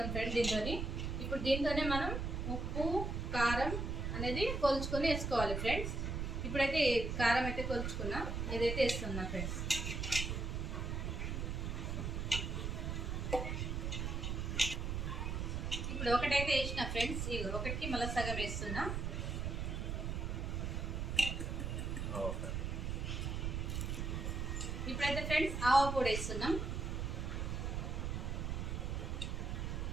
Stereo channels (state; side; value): noise; right; rumble, 1 dB below the sound